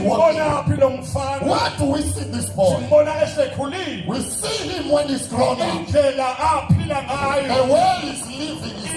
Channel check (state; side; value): identical; both; correlation 1.00